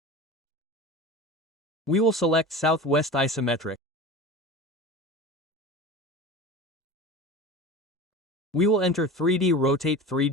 We will select Southwest Isometric. We will enter 3D Rotate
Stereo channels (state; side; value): normal; both; correlation 0.32